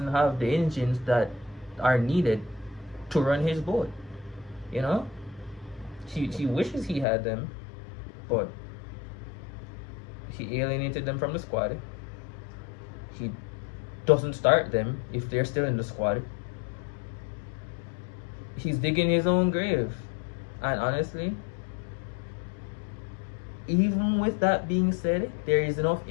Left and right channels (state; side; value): drops out; right; at 7.1 s